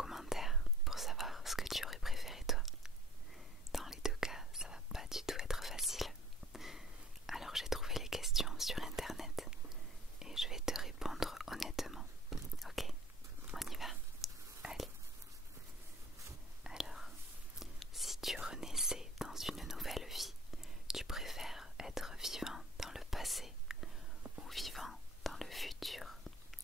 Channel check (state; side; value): normal; both; correlation 0.50